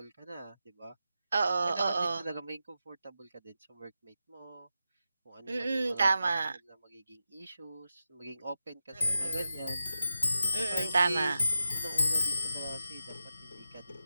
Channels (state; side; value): inverted; both; correlation -0.90